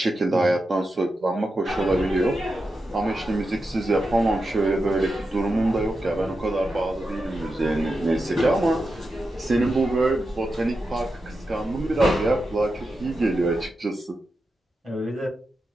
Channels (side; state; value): both; normal; correlation 0.89